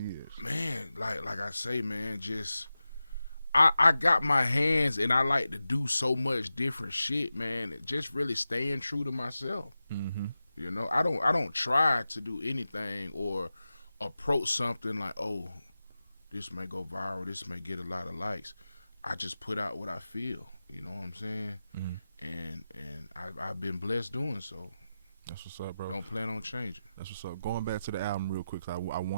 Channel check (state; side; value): inverted; both; correlation -0.93